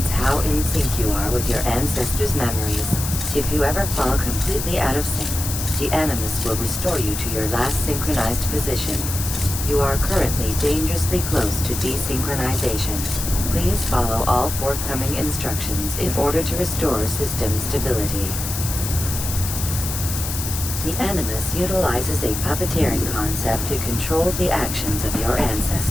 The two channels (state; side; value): noise; left; hiss, 5 dB below the sound